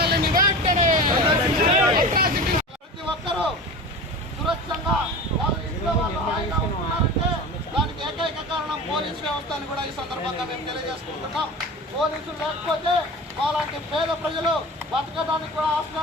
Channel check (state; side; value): normal; both; correlation 0.32